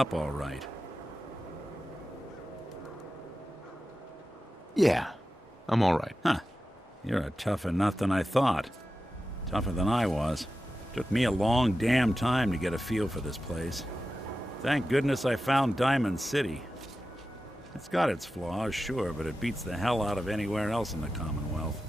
all right. Yeah, I'm all right. Huh. You're a tougher nut than I thought. Tougher than I was. Took me a long damn time to get a feel for this place. Thank goodness I found Diamond City. It's got its flaws, sure, but it beats the hell out of anywhere else in the Commonwealth.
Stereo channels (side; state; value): both; normal; correlation 0.93